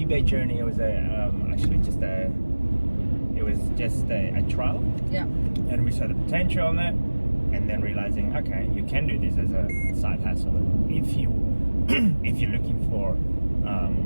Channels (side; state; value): both; inverted; correlation -1.00